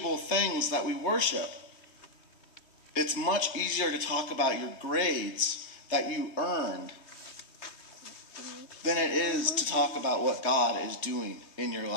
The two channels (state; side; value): late; right; 3.3 ms